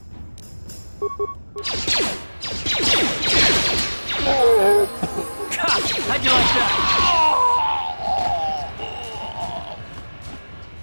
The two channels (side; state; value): both; inverted; correlation -1.00